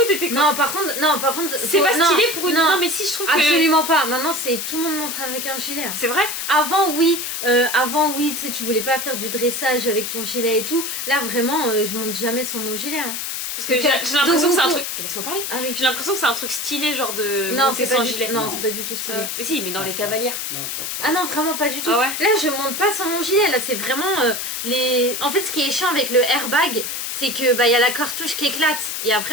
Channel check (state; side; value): noise; left; hiss, 4 dB below the sound